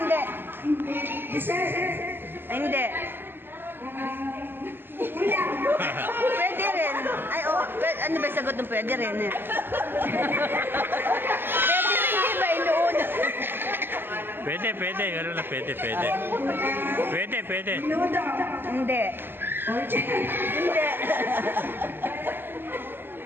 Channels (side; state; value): left; late; 0.098 ms